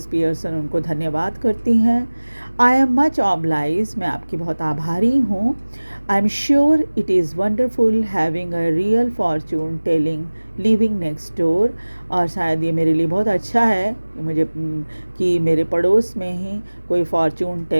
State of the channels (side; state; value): both; inverted; correlation -1.00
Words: पियर्सन उनको धन्यवाद करती हैं। आई एम मच ऑब्लाइज, मैं आपकी बहुत आभारी हूँ। I am sure it is wonderful having a real Fortune telling living next door, और शायद ये मेरे लिए बहुत अच्छा है कि मेरे पड़ोस में ही कोई फॉर्चून